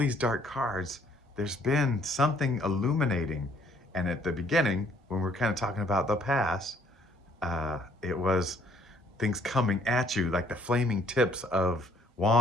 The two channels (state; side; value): normal; both; correlation 0.63